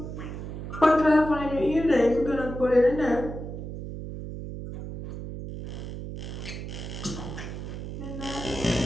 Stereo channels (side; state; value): right; noise; hum, 8 dB below the sound